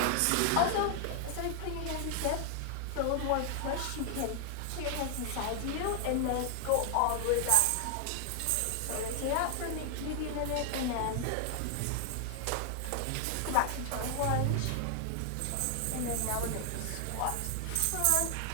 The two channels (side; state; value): both; different; correlation 0.00